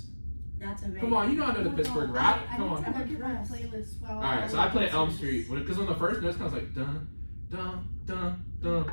That's amazing. Come on, you know I know the Pittsburgh rap. I Come need to on. look at my playlist while Alright, so I play Elm Street because on the first note it sounds like dun dun dun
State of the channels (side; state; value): both; inverted; correlation -1.00